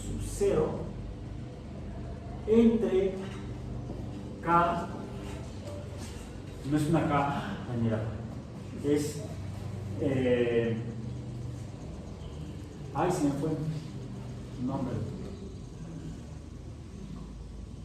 0 entre k, no es una k, mira, es ay, se me fue el nombre.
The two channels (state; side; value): identical; both; correlation 1.00